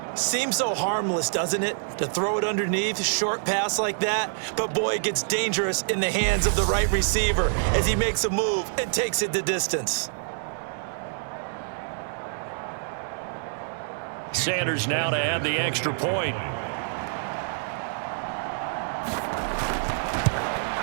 Seems so harmless, doesn't it, to throw it underneath, short pass like that? But boy, it gets dangerous in the hands of the right receiver as he makes a move and takes it the distance. Sanders now to add the extra point.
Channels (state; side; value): silent; left; 61 dB below the other